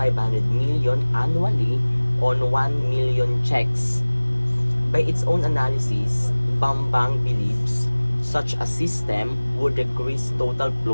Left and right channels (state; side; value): inverted; both; correlation -1.00